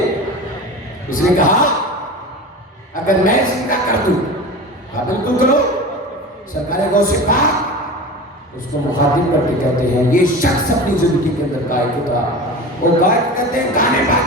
اس نے کہا اگر میں زندہ کر دوں، کہا بالکل کرو۔ سرکار غوث پاک اس کو مخاطب کر کے کہتے ہیں یہ شخص اپنی زندگی کے اندر گائک تھا، وہ گائک کہتے ہیں گانے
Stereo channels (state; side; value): normal; both; correlation 0.32